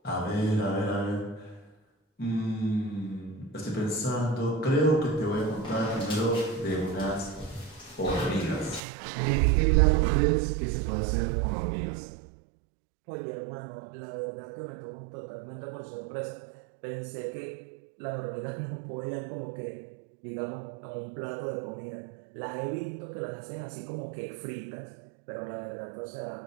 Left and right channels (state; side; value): drops out; left; at 8.8 s